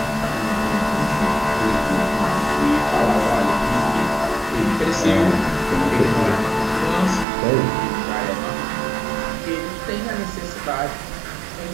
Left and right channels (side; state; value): left; drops out; at 7.2 s